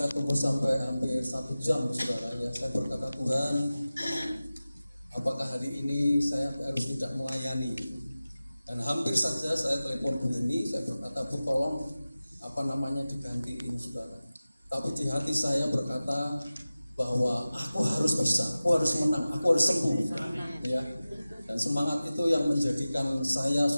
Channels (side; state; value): both; inverted; correlation -0.96